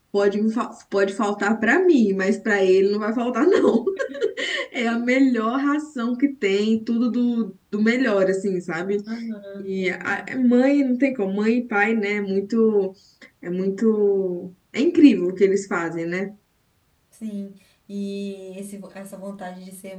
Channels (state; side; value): identical; both; correlation 1.00